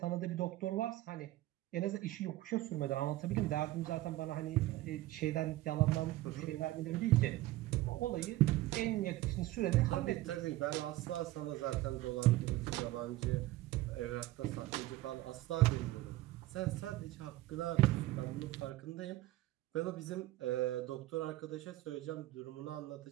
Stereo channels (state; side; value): quieter; left; 16.9 dB